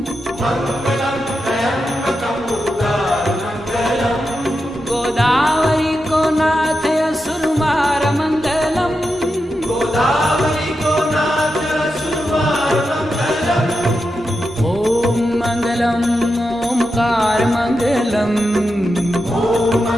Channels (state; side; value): normal; both; correlation 0.88